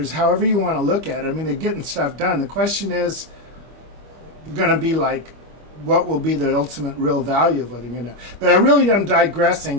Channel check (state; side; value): late; left; 25 ms